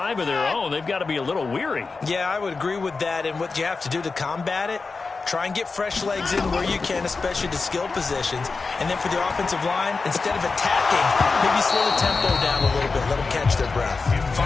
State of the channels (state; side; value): quieter; right; 4.2 dB